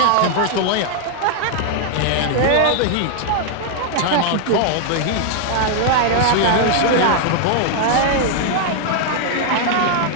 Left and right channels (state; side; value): different; both; correlation 0.00